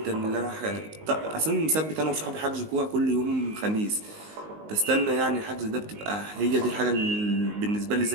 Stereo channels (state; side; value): late; left; 19 ms